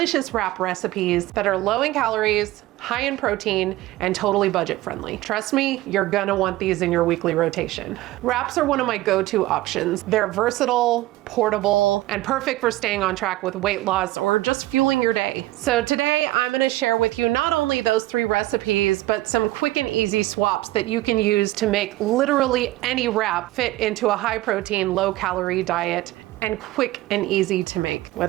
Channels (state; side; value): quieter; left; 16.9 dB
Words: wrap recipes that are low in calories, high in protein, and totally budget friendly. Trust me, you're gonna want these in your weekly rotation. Wraps are one of my go-to options. They're versatile, portable, and perfect for staying on track with weight loss or just fueling your day. So today I'm gonna share with you not only those 3 recipes, but some quick and easy swaps that you can use to make literally any wrap fit into a high protein, low calorie diet and quick and easy to make.